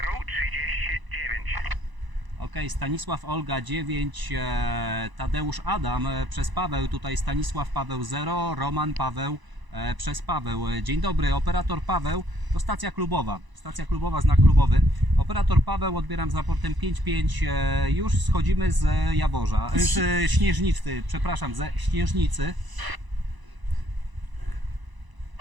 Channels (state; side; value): late; left; 1.0 ms